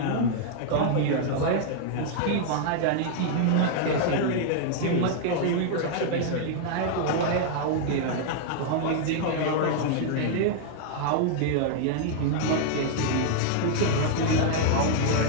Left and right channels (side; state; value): both; different; correlation 0.00